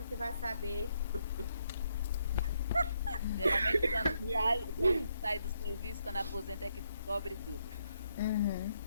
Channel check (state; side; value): inverted; both; correlation -0.76